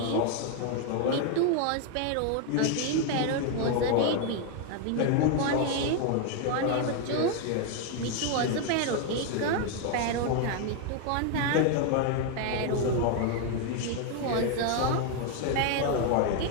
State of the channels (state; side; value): different; both; correlation 0.01